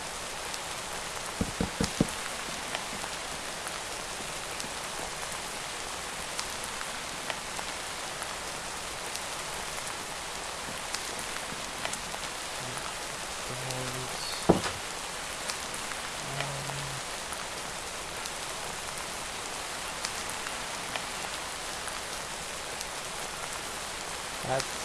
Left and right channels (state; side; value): identical; both; correlation 1.00